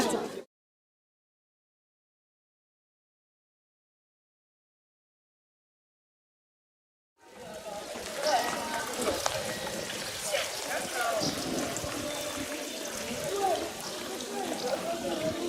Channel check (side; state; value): both; identical; correlation 1.00